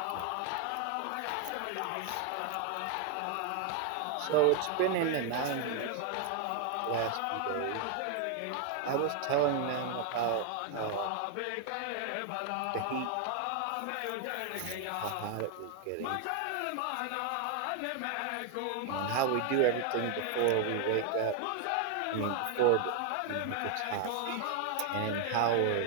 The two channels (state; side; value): different; both; correlation 0.00